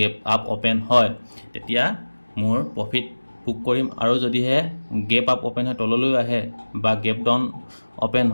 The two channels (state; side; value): inverted; both; correlation -1.00